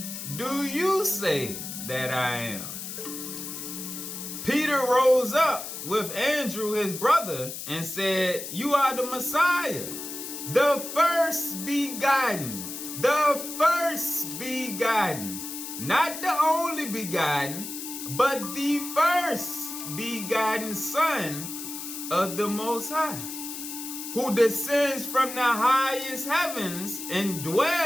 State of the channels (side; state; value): left; noise; hiss, 8 dB below the sound